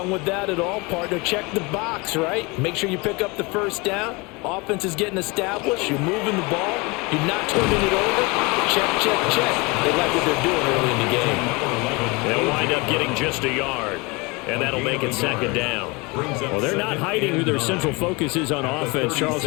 with that at all, partner. Check the box, right? Make sure you pick up the first down. Offense is getting established. You're moving the ball. You're not turning it over. Check, check, check. They like what they're doing early in the game. They'll wind up getting just a yard. And that'll make it second down. Well, they're not hiding who their central focus is on offense. Charles,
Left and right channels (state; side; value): quieter; right; 26.6 dB